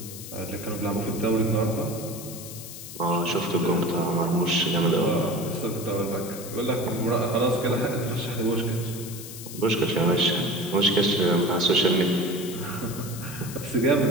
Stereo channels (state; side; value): noise; left; hiss, 12 dB below the sound